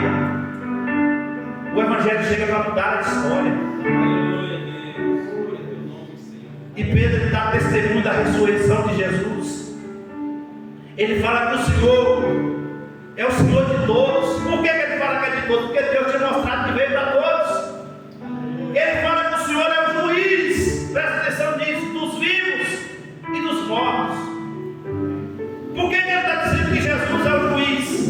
o Evangelho chega para mudar a história. E Pedro dá testemunho da ressurreição de Jesus. Ele fala que o Senhor é o Senhor de todos. Por que ele fala que é de todos? Porque Deus tinha mostrado que veio para todos. Ele fala que o Senhor é o juiz, presta atenção nisso, dos vivos e dos mortos. Por que ele está dizendo que Jesus é o juiz?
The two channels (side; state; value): both; identical; correlation 1.00